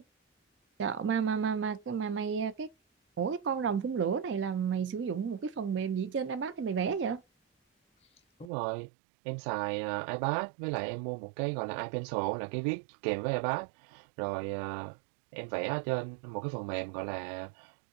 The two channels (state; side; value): drops out; left; at 8.5 s